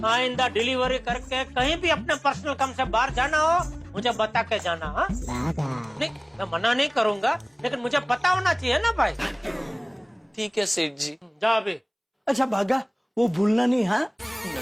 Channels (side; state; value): both; identical; correlation 1.00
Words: आइंदा डिलीवरी करके कहीं भी अपने पर्सनल काम से बाहर जाना हो मुझे बता के जाना। हाँ नहीं, मैं मना नहीं करूंगा, लेकिन मुझे पता होना चाहिए ना भाई। ठीक है सेठ जी। जा अभी। अच्छा भागा, वो भूलना नहीं। हाँ